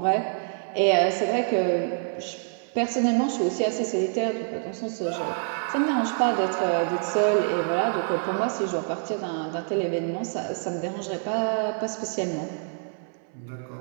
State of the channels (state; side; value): silent; left; 59 dB below the other